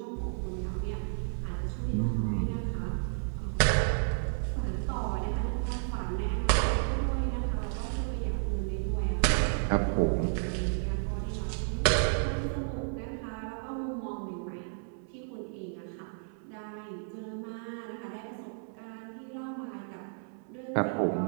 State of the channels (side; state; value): left; silent; 56 dB below the other